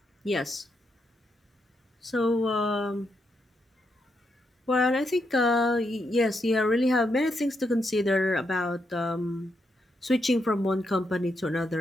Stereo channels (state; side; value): normal; both; correlation 0.81